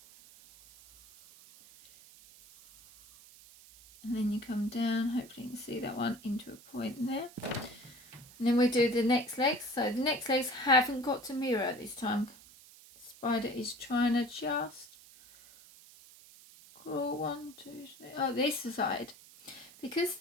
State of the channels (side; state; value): right; noise; hiss, 22 dB below the sound